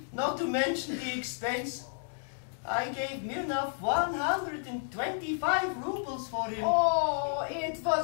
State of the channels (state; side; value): silent; right; digital silence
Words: not to mention the expense. I gave Mirnov 125 rubles for him. Oh, it